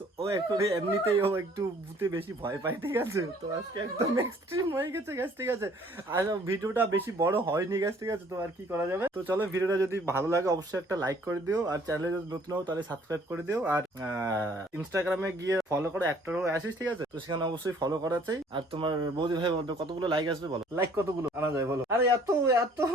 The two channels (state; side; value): normal; both; correlation 0.58